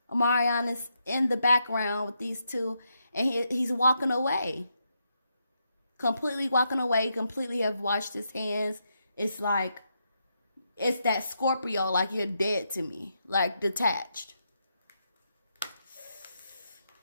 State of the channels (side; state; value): both; inverted; correlation -0.81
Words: Omarion is in the background with these two and he's walking away. Completely walking away, completely have washed his hands. It's like, it's that Scorpio, like you're dead to me, like detached.